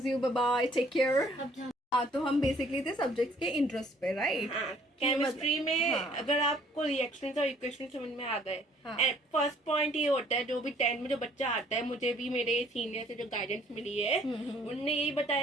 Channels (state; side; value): normal; both; correlation 0.60